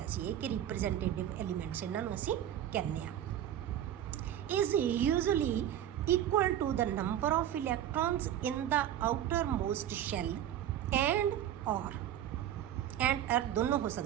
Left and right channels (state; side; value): quieter; left; 11.0 dB